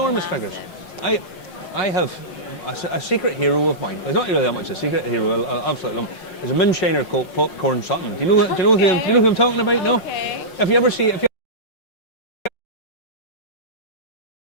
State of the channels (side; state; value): right; late; 5.6 ms